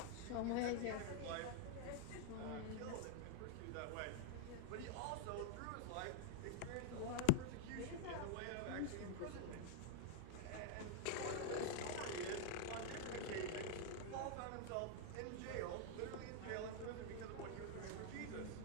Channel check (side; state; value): both; different; correlation 0.00